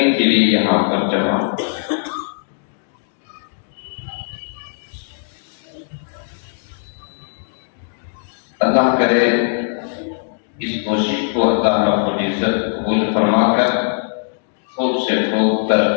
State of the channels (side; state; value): right; silent; digital silence